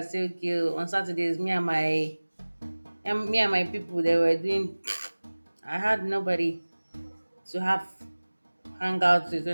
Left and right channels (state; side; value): inverted; both; correlation -1.00